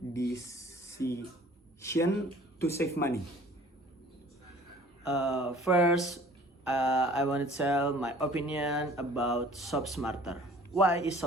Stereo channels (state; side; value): normal; both; correlation 0.50